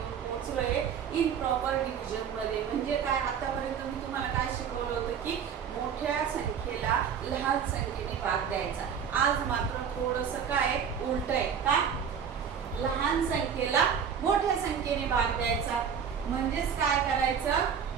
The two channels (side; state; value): left; quieter; 7.5 dB